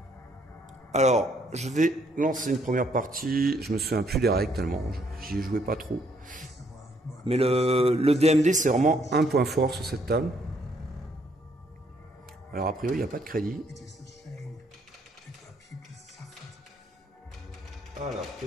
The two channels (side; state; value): both; normal; correlation 0.69